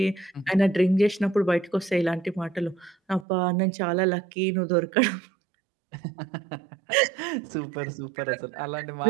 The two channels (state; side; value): drops out; left; at 3.2 s